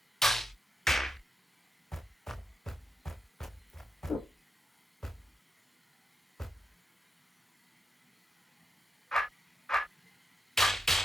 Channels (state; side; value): normal; both; correlation 0.87